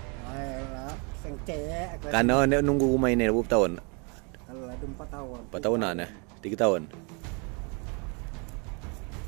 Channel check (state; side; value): quieter; left; 33.5 dB